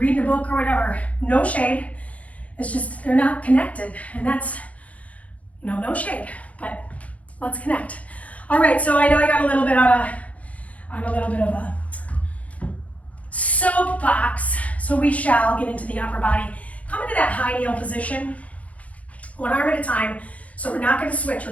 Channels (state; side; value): late; right; 0.068 ms